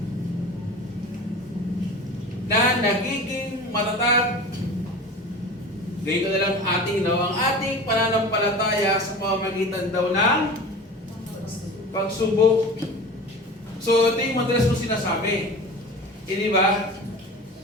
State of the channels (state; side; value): normal; both; correlation 0.35